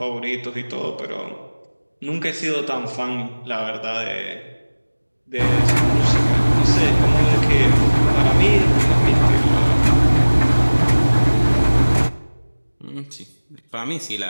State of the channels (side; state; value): both; inverted; correlation -1.00